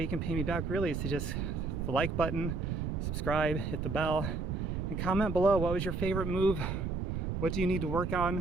you can pay me back really is to just the like button, subscribe, hit the bell, and comment below what was your favorite move, what do you need to work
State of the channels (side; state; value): right; noise; rumble, 2 dB below the sound